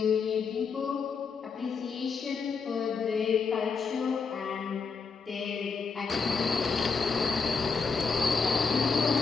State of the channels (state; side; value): quieter; right; 5.2 dB